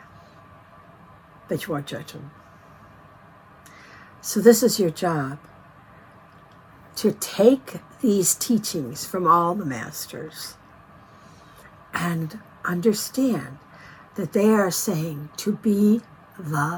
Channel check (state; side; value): identical; both; correlation 1.00